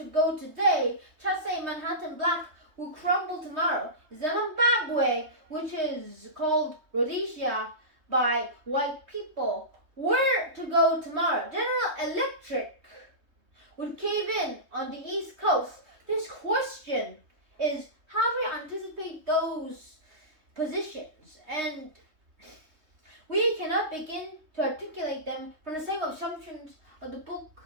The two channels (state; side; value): late; left; 3.2 ms